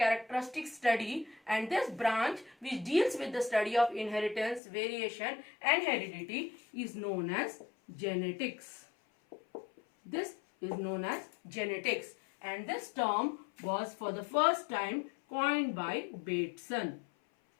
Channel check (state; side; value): drops out; right; at 4.6 s